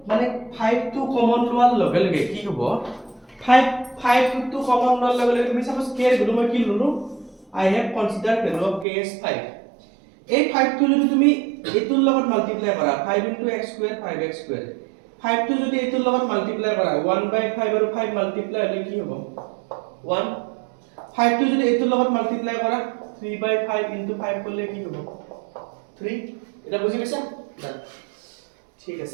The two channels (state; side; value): drops out; left; at 8.8 s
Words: মানে 5 to common লোৱাৰ লগে লগে কি হ'ব 5 to common লোৱাৰ লগে লগে তুমি suppose k এর ভ্যালু মই কি ললো I have considered value of k as 5 এই 5 টো যদি তুমি এটোৰ লগত মাল্টিপ্লাই কৰা 5 * x² 5x² 5 টো যদি এটোৰ লগত মাল্টিপ্লাই কৰা 1/5 আৰু 5 মাল্টিপ্লাই হলে কি হ'ব 1 5 টো যদি এটোৰ লগত মাল্টিপ্লাই কৰা 3/5 * 5 করলে কি হ'ব 3 এটা বুজি পাইছা ঠিক